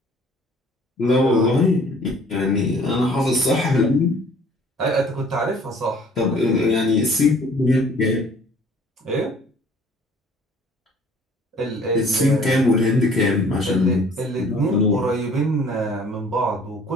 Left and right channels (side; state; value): both; normal; correlation 0.54